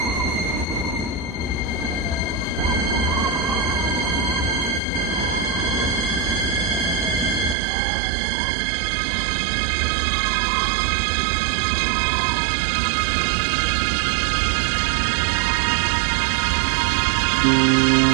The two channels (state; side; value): drops out; left; at 7.6 s